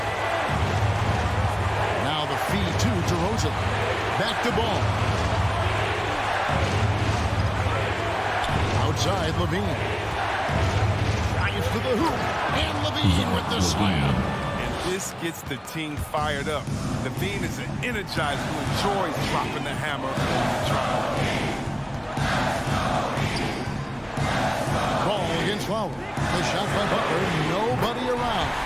Now the feed to DeRozan. Back to Ball. Outside, Levine. Drives to the hoop. And Levine with the slam. And this gets the team fired up. Levine is an energizer who enjoys dropping the hammer on the drive. Ball against Lowry. The shot by Butler. Nobody around.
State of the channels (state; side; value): identical; both; correlation 1.00